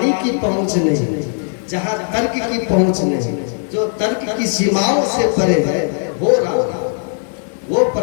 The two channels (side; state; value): right; silent; 68 dB below the other